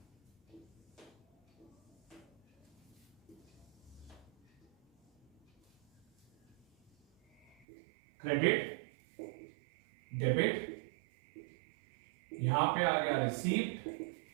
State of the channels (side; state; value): left; drops out; at 7.7 s